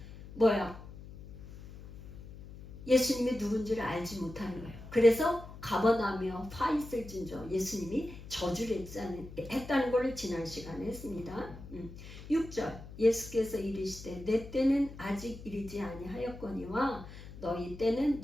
예수님이 누군지를 알지 못하는 거예요. 그래서 가버나움에 화 있을진저 예수님이 저주를 했다는 걸 지난 시간에 했습니다. 6절, 예수께서 이르시되 내 때는 아직 이르지 아니하였거니와 너희 때는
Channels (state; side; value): noise; left; hum, 14 dB below the sound